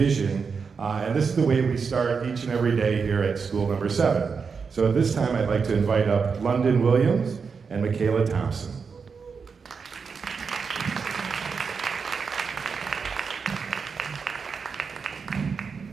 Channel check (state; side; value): quieter; left; 5.5 dB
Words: and this is the way we start each and every day here at School number 7. So at this time, I'd like to invite up London Williams and Michaela Thompson.